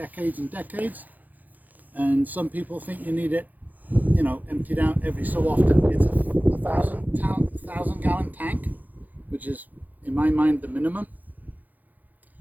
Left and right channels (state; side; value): late; left; 0.082 ms